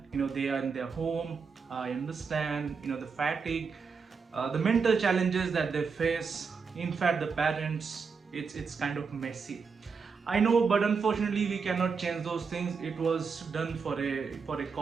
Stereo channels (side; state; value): left; quieter; 5.4 dB